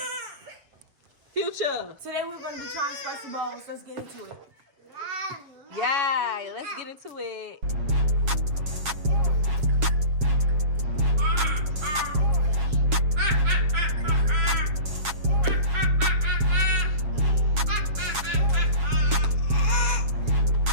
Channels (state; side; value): late; left; 7.3 ms